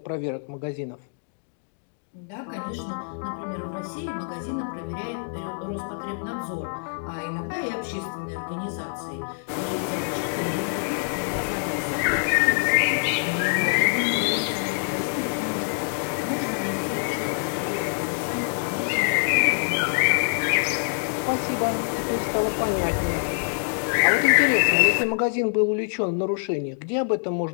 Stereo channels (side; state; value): right; silent; digital silence